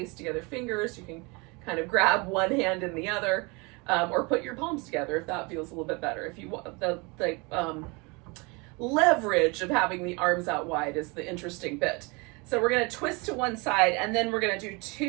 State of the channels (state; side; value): quieter; left; 28.1 dB